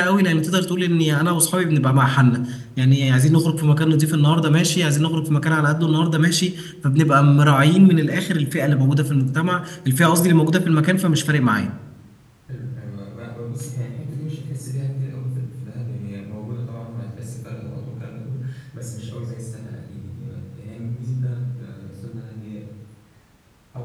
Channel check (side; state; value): both; identical; correlation 1.00